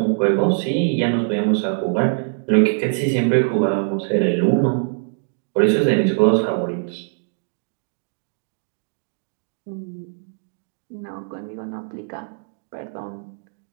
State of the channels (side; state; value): left; silent; digital silence